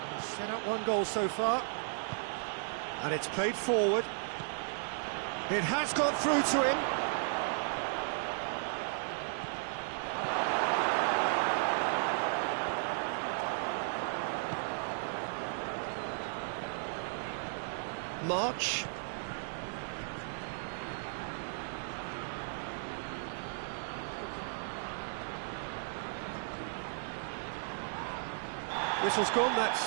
set up one goal so far. And it's played forward. It has got through to him. March. Whistle's gone, that's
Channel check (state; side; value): silent; left; 54 dB below the other